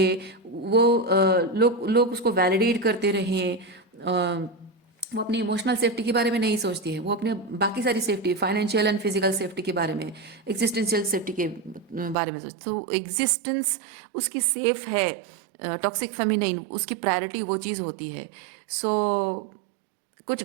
वो लोग लोग उसको वैलिडेट करते रहें। वो अपनी इमोशनल सेफ्टी के बारे में नहीं सोचती है, वो अपने बाकी सारी safety, financial and physical safety के बारे में, एग्जिस्टेंशियल सेफ्टी के बारे में सोचती। तो एग्जिस्टेंस उसकी सेफ है। टॉक्सिक फेमिनिन उसकी प्रायोरिटी वो चीज़ होती है। सो कुछ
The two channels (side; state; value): left; drops out; at 12.2 s